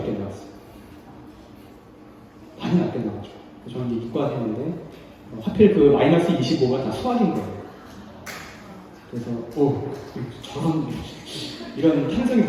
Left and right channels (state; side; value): identical; both; correlation 1.00